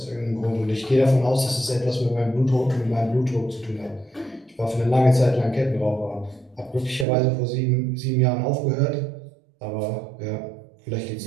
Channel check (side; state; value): left; drops out; at 7.1 s